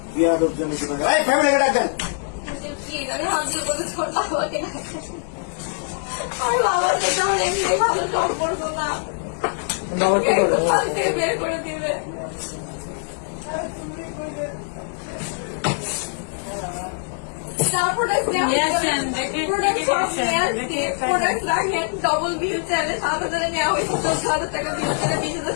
ফ্যামিলিকে ডাকবেন। আমি হাত দিয়ে বলেছি ওর বাবাকে ডাকতে। আমার বাবার সাথে আমার এমনি ভালো সম্পর্ক না, হাত দিয়ে বের করে দিবে। ডবল বিল চাইলে 7,000 নেওয়া হয়েছে, 14,000 টাকা বিল চাইলে 20,000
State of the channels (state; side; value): silent; right; digital silence